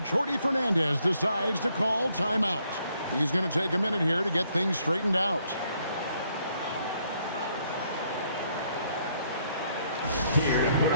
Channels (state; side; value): inverted; both; correlation -0.70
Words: Jordi Fernandez decides to call timeout. He's going to take a minute here to get things straightened out. Here to put